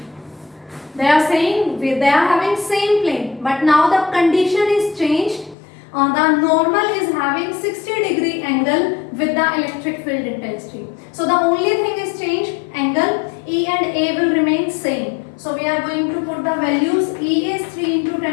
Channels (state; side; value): drops out; right; at 5.6 s